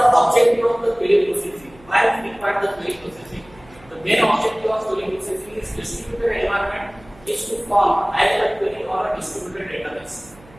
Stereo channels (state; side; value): noise; right; hum, 25 dB below the sound